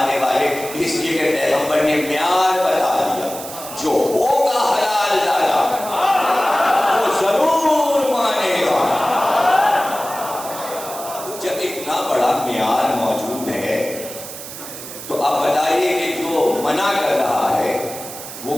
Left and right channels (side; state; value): right; noise; hiss, 11 dB below the sound